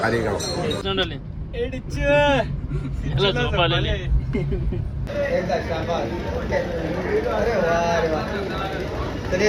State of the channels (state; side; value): identical; both; correlation 1.00